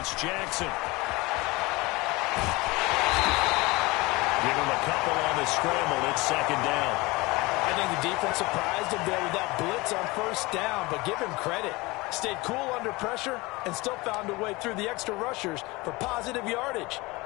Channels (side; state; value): right; quieter; 23.0 dB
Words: Jackson. Give him a couple on the scramble. It's 2nd down. I think the defense surprised him there with that blitz on 1st down, but give him credit. Stayed cool under pressure and still found a way through the extra rushers for positive yardage.